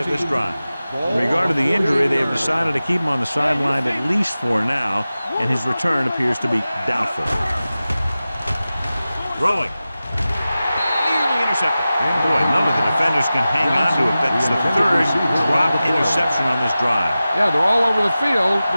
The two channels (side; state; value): both; inverted; correlation -0.95